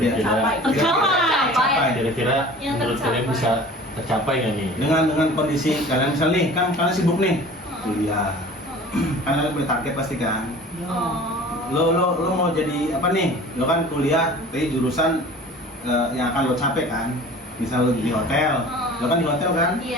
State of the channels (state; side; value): normal; both; correlation 0.43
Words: Tercapai. kira-kira Yang menurut kalian tercapai. bisa tercapai nggak nih? Dengan kondisi kalian misal nih, kan kalian sibuk nih kuliah. Kan kalian punya target pasti kan. Oh. Lo mau jadi apa nih? Lo kan kuliah, tapi jurusan yang akan lo capai kan. Misal lo di hotel, lo kan di hotel kan?